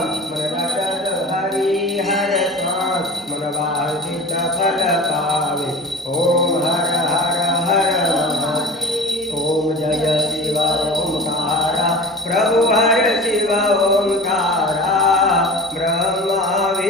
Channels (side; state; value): both; normal; correlation 0.35